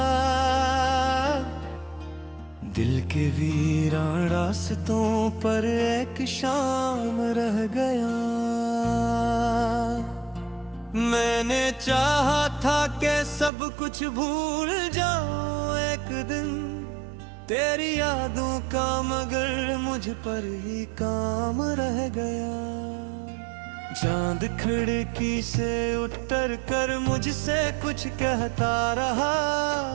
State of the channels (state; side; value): drops out; left; at 13.5 s